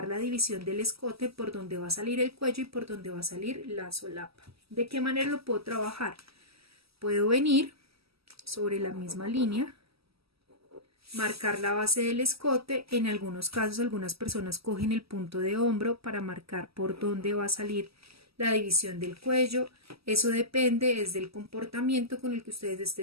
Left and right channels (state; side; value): late; left; 0.76 ms